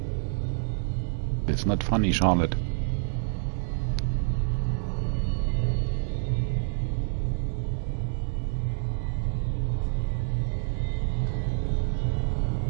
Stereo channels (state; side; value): silent; left; digital silence